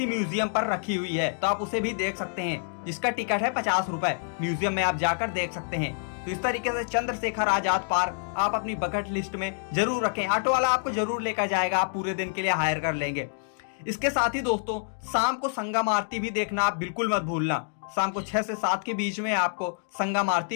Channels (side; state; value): right; silent; digital silence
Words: म्यूजियम पर रखी हुई है, तो आप उसे भी देख सकते हैं, जिसका टिकट है 50 रुपए। म्यूजियम में आप जाकर देख सकते हैं। तो इस तरीके से चंद्रशेखर आजाद पार्क आप अपनी बकेट लिस्ट में जरूर रखें। ऑटो वाला आपको जरूर लेकर जाएगा, आप पूरे दिन के लिए हायर कर लेंगे। इसके साथ ही दोस्तों शाम को संगम आरती भी देखना आप बिल्कुल मत भूलना। शाम को 6 से 7 के बीच में आपको संगम